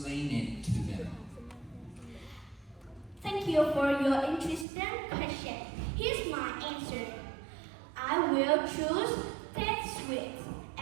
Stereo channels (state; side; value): drops out; left; at 4.7 s